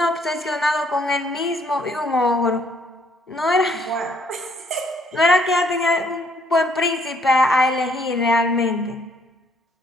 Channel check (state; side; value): normal; both; correlation 0.66